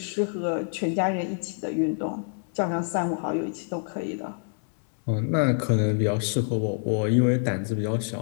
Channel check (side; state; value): right; silent; 60 dB below the other